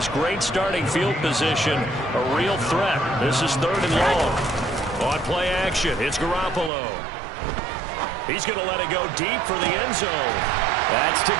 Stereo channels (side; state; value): left; drops out; at 6.7 s